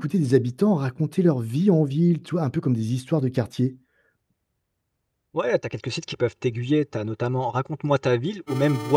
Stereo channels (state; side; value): identical; both; correlation 1.00